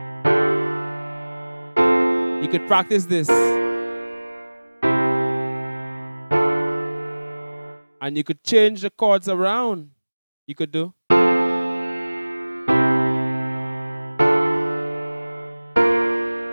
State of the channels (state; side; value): inverted; both; correlation -1.00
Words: You could practice this. And you could change the chords around. You could do.